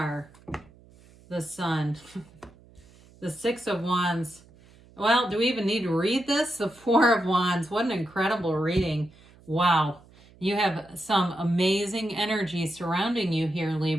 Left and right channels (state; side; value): noise; right; hum, 26 dB below the sound